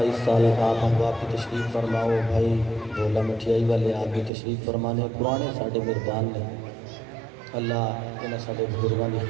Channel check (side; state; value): left; drops out; at 4.3 s